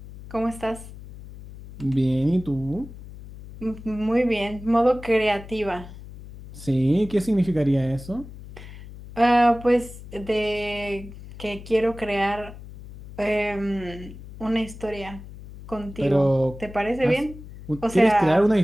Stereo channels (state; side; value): noise; left; hum, 15 dB below the sound